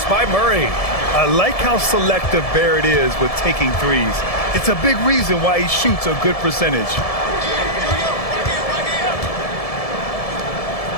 by Murray. I like how selective Barrett is with taking threes. It's a big reason why he shoots a good percentage.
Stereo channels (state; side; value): late; right; 1.7 ms